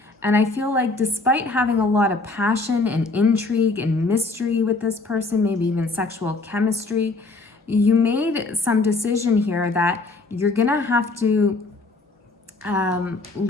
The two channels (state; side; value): quieter; right; 3.4 dB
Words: And I feel like despite having a lot of passion and intrigue and mystery with this person, maybe even sexual chemistry, you made some decision here that you're gonna have to